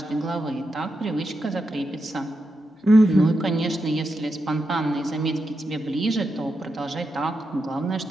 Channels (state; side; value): normal; both; correlation 0.86